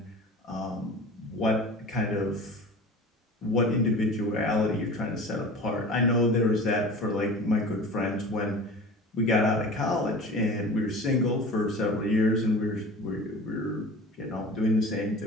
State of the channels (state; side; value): normal; both; correlation 0.38